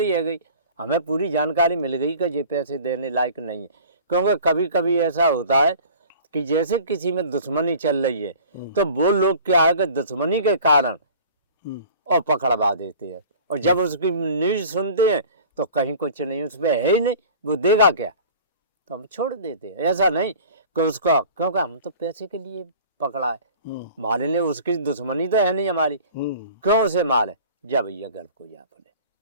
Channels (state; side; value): inverted; both; correlation -0.44